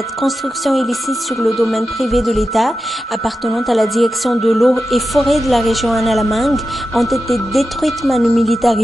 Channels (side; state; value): both; normal; correlation 0.91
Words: constructions illicites sur le domaine privé de l'État, appartenant à la direction de l'eau et forêt de la région Analamang, ont été détruites manu